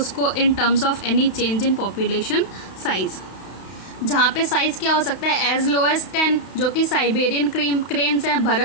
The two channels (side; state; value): right; late; 32 ms